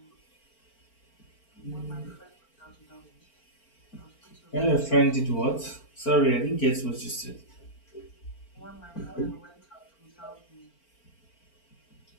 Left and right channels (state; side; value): late; right; 4.4 ms